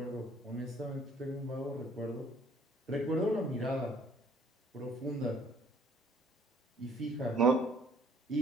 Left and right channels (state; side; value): normal; both; correlation 0.59